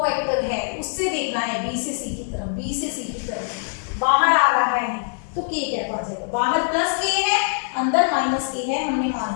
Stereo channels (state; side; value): silent; right; digital silence